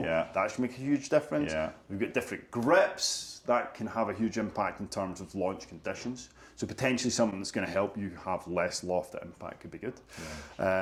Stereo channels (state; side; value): identical; both; correlation 1.00